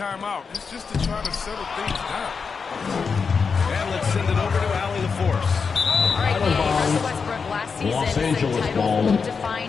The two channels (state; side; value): quieter; right; 5.4 dB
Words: It's just to try to settle things down. And let's send it over to Allie the Force. All right, Russell Westbrook last season Los said Angeles title ball. won't define